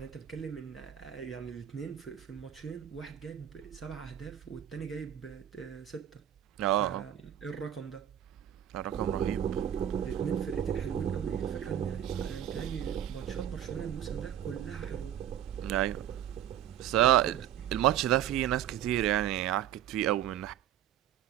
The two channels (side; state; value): left; quieter; 10.9 dB